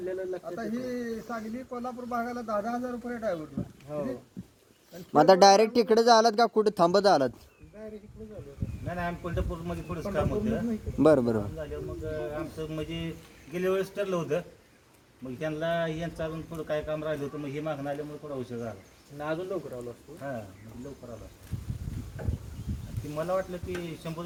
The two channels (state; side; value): identical; both; correlation 1.00